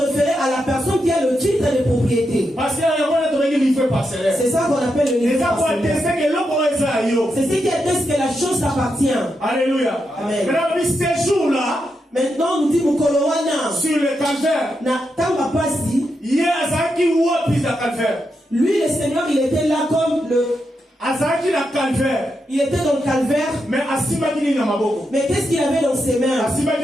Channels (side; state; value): both; normal; correlation 0.85